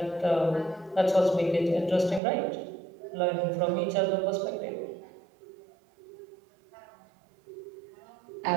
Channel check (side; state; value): left; drops out; at 2.2 s